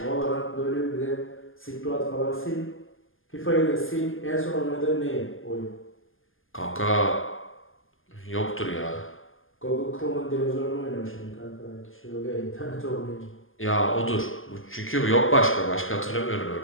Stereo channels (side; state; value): right; late; 0.59 ms